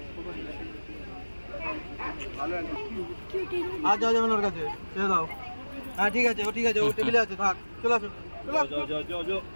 आ जाओ जाओ नरका से चले जाओ हां ठीक है वो टेबल আছে থাক চলো চলো जो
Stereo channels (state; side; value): inverted; both; correlation -1.00